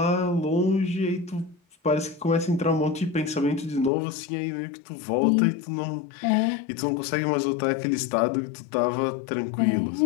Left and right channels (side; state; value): right; drops out; at 3.9 s